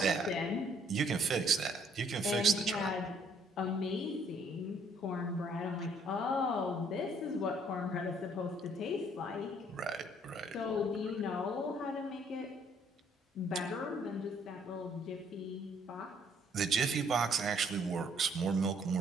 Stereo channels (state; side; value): normal; both; correlation 0.64